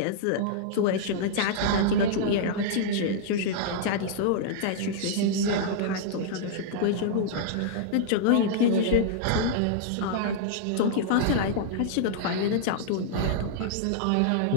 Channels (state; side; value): different; both; correlation -0.02